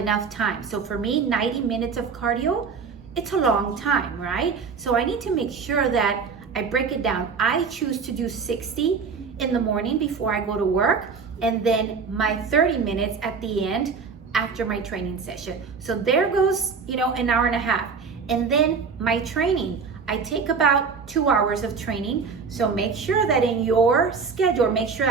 time. So for me, 90 minutes of cardio, it's a long time, right? So I need to make sure that I break it down. I choose to do 60 in the morning before I go to work, and then my 30 minutes at the end after my training session. So there goes, an hour and a half. And then my training, I take about 2 hours of training. So make sure that in your schedule,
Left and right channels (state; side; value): quieter; left; 5.4 dB